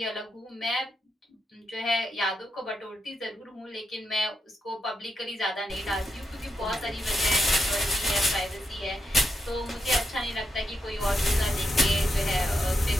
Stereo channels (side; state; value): both; normal; correlation 0.85